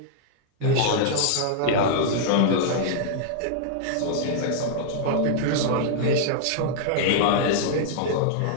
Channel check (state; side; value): different; both; correlation -0.01